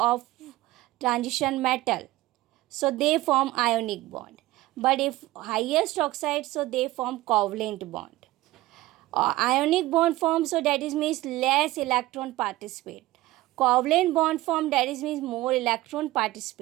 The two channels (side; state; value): left; quieter; 17.6 dB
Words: transition metal, so they form ionic bond. But if highest oxide, so they form covalent bond. Ionic bond form, so that is means less electron participate. Covalent bond form, that is means more electron